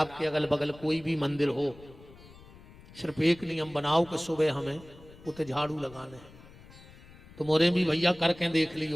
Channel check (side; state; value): left; noise; rumble, 21 dB below the sound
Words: अगल बगल कोई भी मंदिर हो, सिर्फ एक नियम बनाओ कि सुबह हमें उते झाड़ू लगाने हैं। तो मोरे भी भैया करके देख